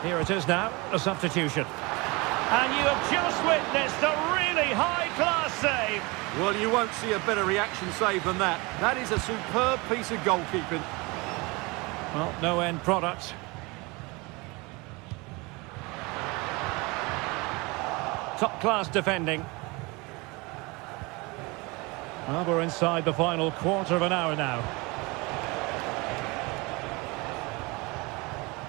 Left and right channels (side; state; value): left; quieter; 25.6 dB